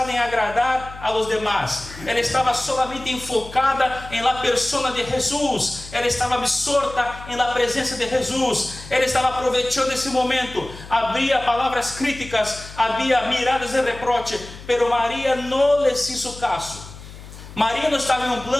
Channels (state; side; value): noise; left; hum, 16 dB below the sound